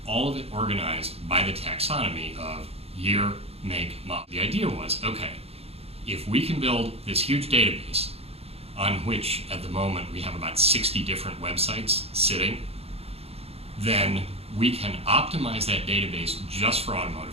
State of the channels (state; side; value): late; left; 0.29 ms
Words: all of it organized by the taxonomy of year, make, model. The idea was, okay, if we can build this huge database on which at the moment we have about 60 different websites sitting, then we can optimize that database just for